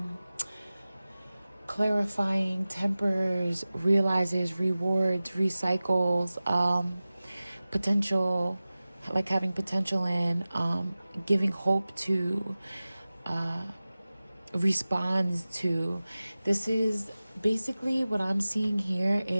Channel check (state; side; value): inverted; both; correlation -0.97